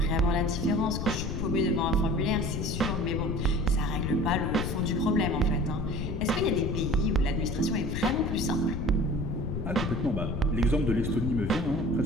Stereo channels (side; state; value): left; noise; rumble, 2 dB below the sound